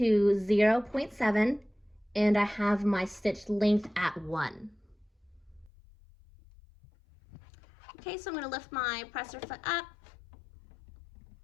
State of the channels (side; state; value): right; drops out; at 5.7 s